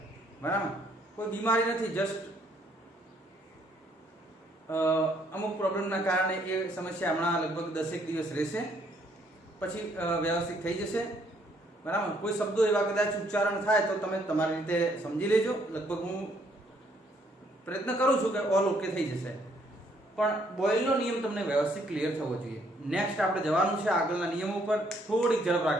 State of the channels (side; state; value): both; normal; correlation 0.68